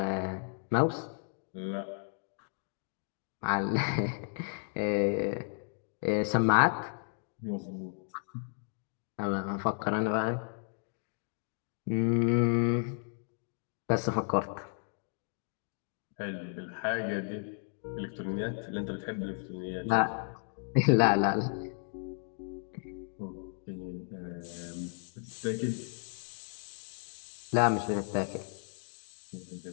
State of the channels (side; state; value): right; silent; 55 dB below the other